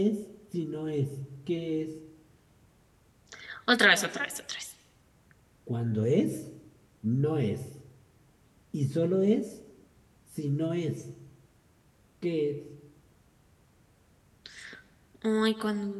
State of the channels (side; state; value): both; identical; correlation 1.00